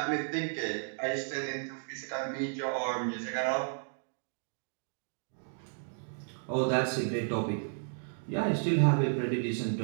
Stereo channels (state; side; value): silent; left; 56 dB below the other